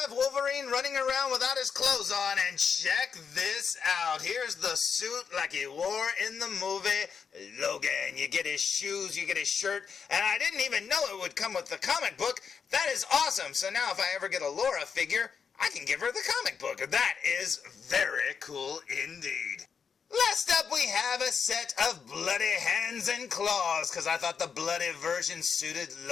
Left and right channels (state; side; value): quieter; right; 6.4 dB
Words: Wolverine running around without his clothes on, and check this out. Here's the suit like he wore in the movie Logan. You get his shoes, you get his shirt, and I didn't even know it would come with the comic book. That is awesome. So now if I ever get a Laura figure, I can give her the comic book. That is very cool indeed. Last up, we have a set of bloody hands and claws, because I thought the bloody version suited